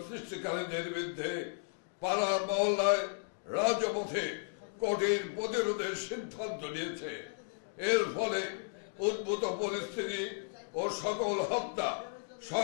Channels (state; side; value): silent; right; digital silence